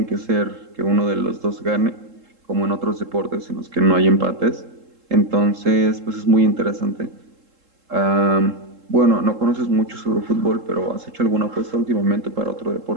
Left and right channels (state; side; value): late; left; 3.7 ms